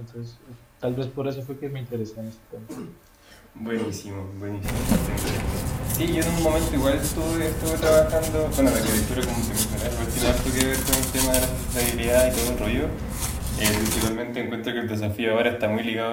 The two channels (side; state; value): both; identical; correlation 1.00